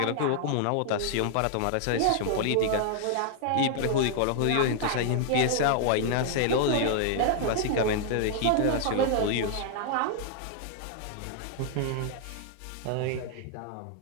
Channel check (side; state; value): both; different; correlation 0.00